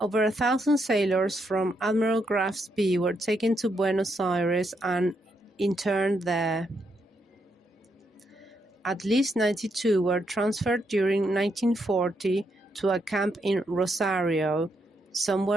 1,000 sailors from Admiral Graf Spee were taken to Buenos Aires and interned there. At least 92 were transferred during 1940 to a camp in Rosario. Some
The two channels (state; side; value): normal; both; correlation 0.78